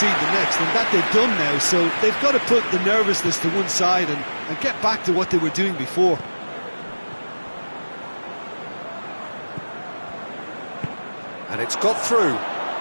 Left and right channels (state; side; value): inverted; both; correlation -1.00